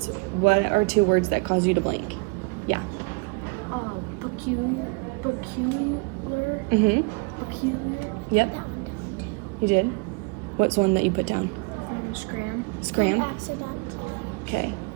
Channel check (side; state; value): left; quieter; 31.9 dB